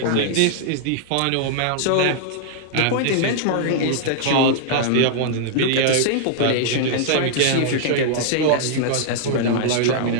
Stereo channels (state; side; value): different; both; correlation -0.01